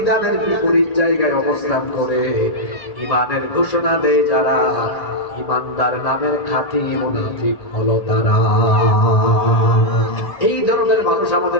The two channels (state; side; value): late; right; 1.8 ms